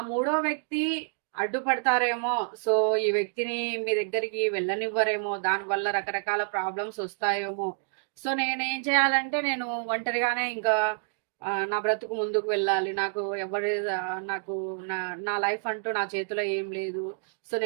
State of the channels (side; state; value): left; silent; digital silence